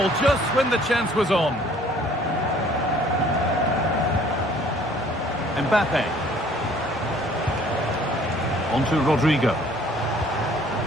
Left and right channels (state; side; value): normal; both; correlation 0.56